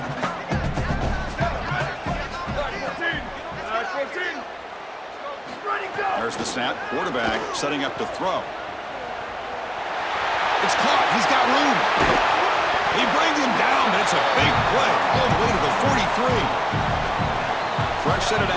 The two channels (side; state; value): both; identical; correlation 1.00